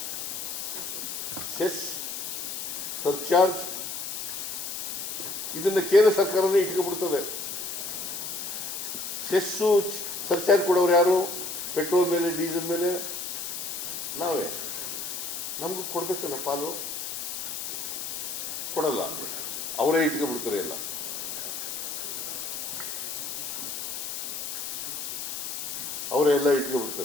ಸೆಸ್, ಸರ್ಚಾರ್ಜ್ ಇದನ್ನ ಕೇಂದ್ರ ಸರ್ಕಾರನೇ ಇಟ್ಕೊಬಿಡ್ತದೆ. ಸೆಸ್ಸು ಸರ್ಚಾರ್ಜ್ ಕೊಡೋರು ಯಾರು? ಪೆಟ್ರೋಲ್ ಮೇಲೆ, ಡೀಸೆಲ್ ಮೇಲೆ ನಾವೇ. ನಮಗೂ ಕೊಡಬೇಕಲ್ಲ ಪಾಲು, ಕೊಡಲ್ಲ. ಅವರೇ ಇಟ್ಕೊಬಿಡ್ತಾರೆ ಎಲ್ಲ. ಅವರೇ ಎಲ್ಲ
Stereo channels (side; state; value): left; noise; hiss, 5 dB below the sound